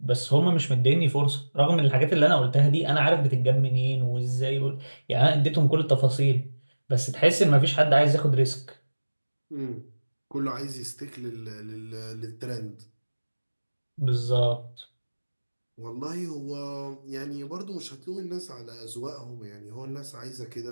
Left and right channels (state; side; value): inverted; both; correlation -1.00